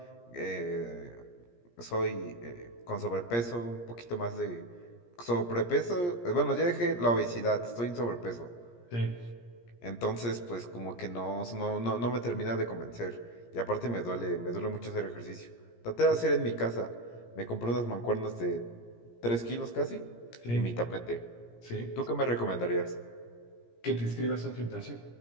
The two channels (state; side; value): late; right; 17 ms